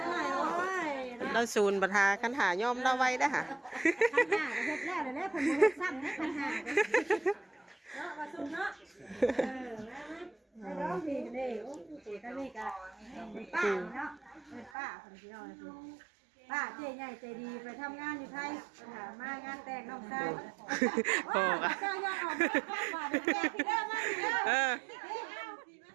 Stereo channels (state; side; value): drops out; left; at 14.7 s